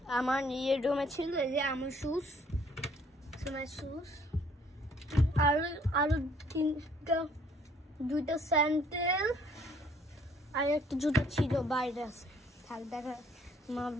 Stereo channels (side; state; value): both; normal; correlation 0.61